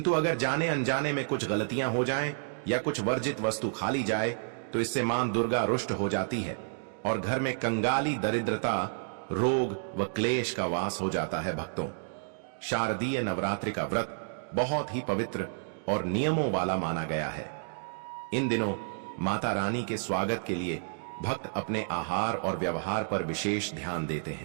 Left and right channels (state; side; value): silent; left; digital silence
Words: अगर जाने अनजाने में कुछ गलतियां हो जाएं या कुछ वर्जित वस्तु खा ली जाए तो इससे मां दुर्गा रुष्ट हो जाती है और घर में कंगाली, दरिद्रता, रोग व क्लेश का वास हो जाता है। भक्तों, शारदीय नवरात्रि का व्रत बहुत ही पवित्र और नियमों वाला माना गया है। इन दिनों माता रानी के स्वागत के लिए भक्त अपने आहार और व्यवहार पर विशेष ध्यान देते